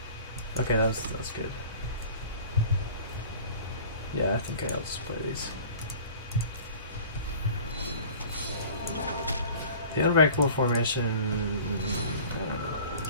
okay, that was good. Yeah, I think I'll just play these. The Unbreakable formation, I don't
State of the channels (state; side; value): inverted; both; correlation -0.44